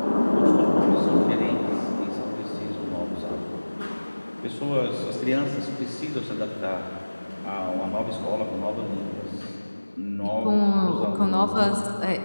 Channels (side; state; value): both; inverted; correlation -1.00